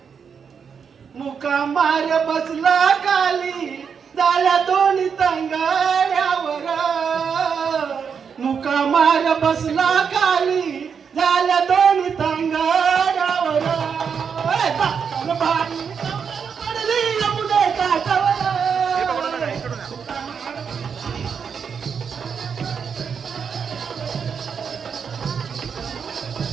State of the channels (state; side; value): quieter; left; 6.6 dB